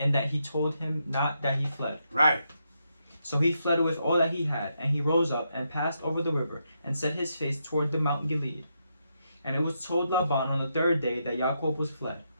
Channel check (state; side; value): inverted; both; correlation -0.81